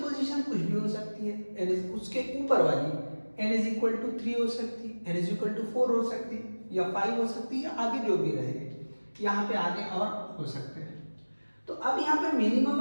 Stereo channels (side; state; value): both; inverted; correlation -1.00